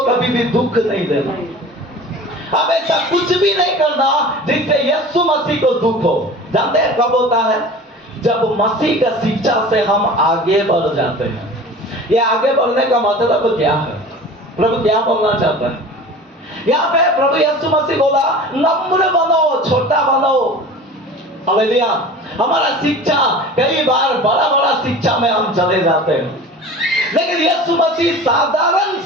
कभी भी दुख नहीं देना। अब ऐसा कुछ भी नहीं करना जिससे यीशु मसीह को दुख हो। जानते हैं कब होता है? जब मसीह का शिक्षा से हम आगे बढ़ जाते हैं। ये आगे बढ़ने का मतलब क्या है? प्रभु क्या बोलना चाहता है यहाँ पे? प्रभु यीशु मसीह बोला नम्र बनो, छोटा बनो। हालेलुया। हमारा शिक्षा कई बार बड़ा बड़ा शिक्षा में हम चले जाते हैं, लेकिन यीशु मसीह साधारण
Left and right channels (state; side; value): normal; both; correlation 0.38